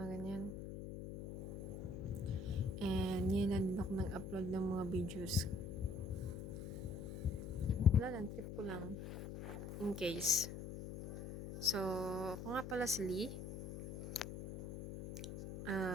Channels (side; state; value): left; noise; hum, 8 dB below the sound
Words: ganyan. And yun na din ako nag-upload ng mga videos. Wala lang, trip ko lang. In case. So, ako nga pala si Lee.